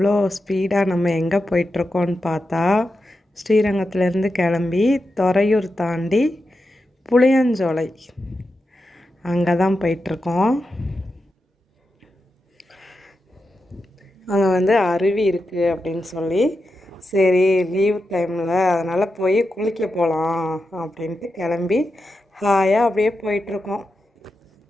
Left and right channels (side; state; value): both; normal; correlation 0.89